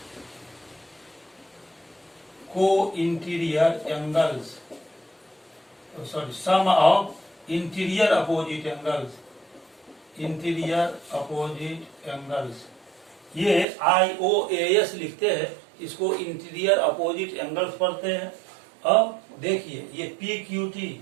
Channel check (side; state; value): left; drops out; at 13.7 s